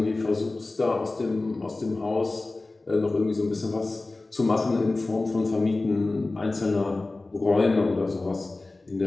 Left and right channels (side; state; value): right; quieter; 3.2 dB